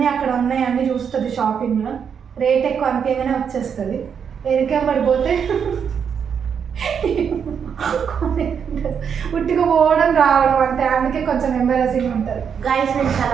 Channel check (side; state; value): left; quieter; 7.2 dB